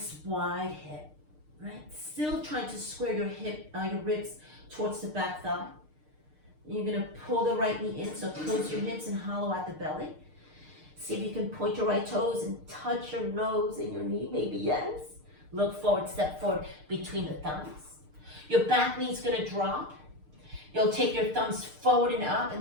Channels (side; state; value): left; late; 6.6 ms